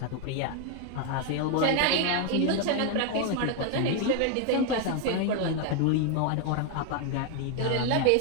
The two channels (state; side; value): different; both; correlation 0.01